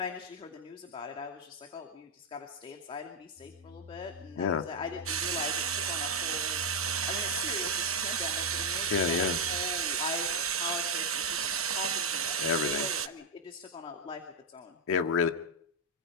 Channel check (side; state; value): both; normal; correlation 0.01